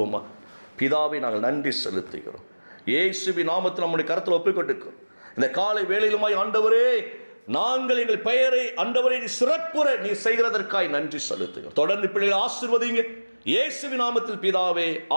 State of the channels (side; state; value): both; inverted; correlation -1.00